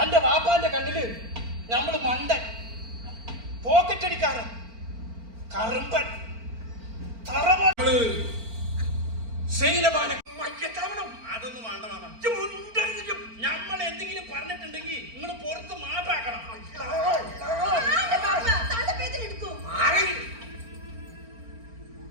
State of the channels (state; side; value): late; left; 4.4 ms